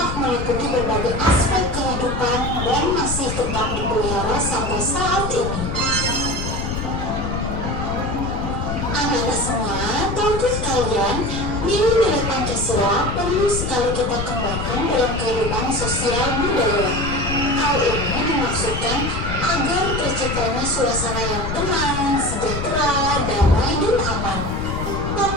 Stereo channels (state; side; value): noise; left; rumble, 4 dB below the sound